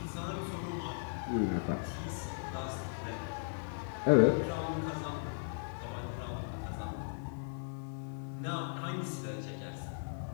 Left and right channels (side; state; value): right; silent; 53 dB below the other